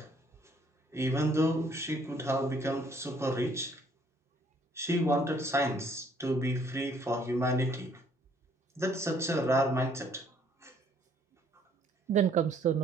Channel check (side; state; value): both; normal; correlation 0.63